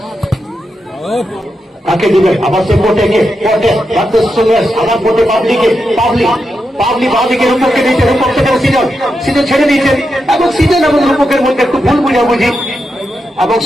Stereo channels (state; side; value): normal; both; correlation 0.86